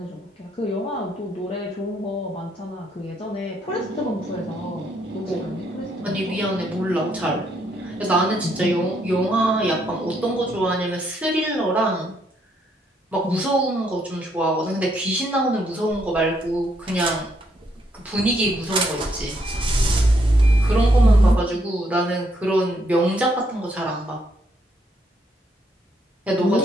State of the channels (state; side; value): normal; both; correlation 0.73